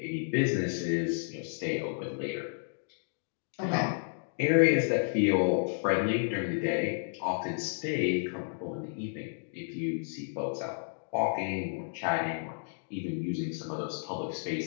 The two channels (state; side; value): silent; right; digital silence